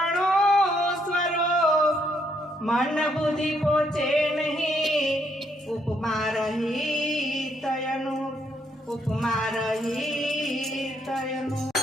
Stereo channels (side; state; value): both; normal; correlation 0.73